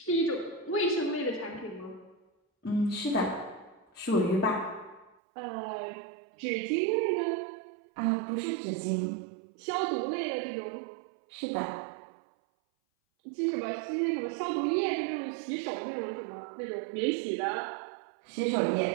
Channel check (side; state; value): left; drops out; at 5.2 s